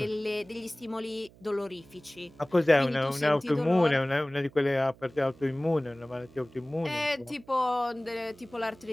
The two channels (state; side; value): noise; right; hum, 25 dB below the sound